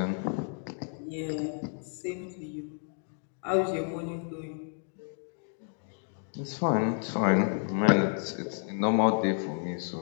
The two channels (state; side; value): silent; right; 56 dB below the other